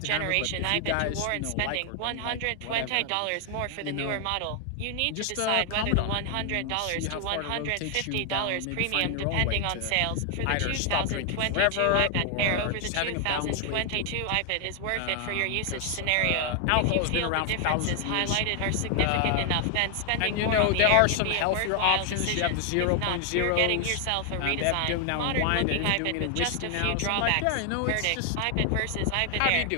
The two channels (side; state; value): both; different; correlation 0.00